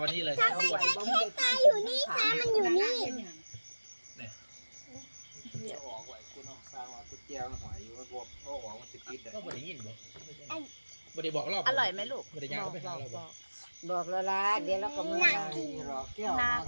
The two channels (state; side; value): inverted; both; correlation -1.00